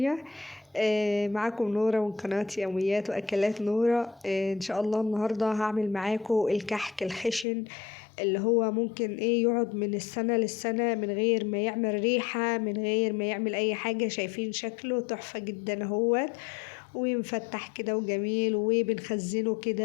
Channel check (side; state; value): right; drops out; at 7.5 s